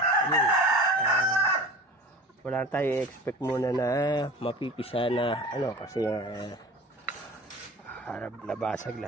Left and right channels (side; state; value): both; normal; correlation 0.38